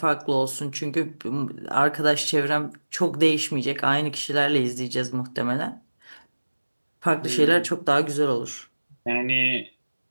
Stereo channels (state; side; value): inverted; both; correlation -1.00